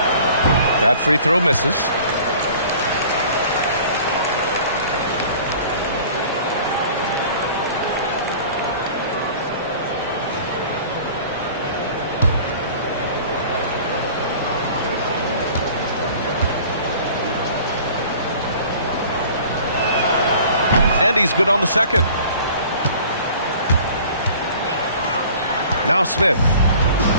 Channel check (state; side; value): inverted; both; correlation -0.47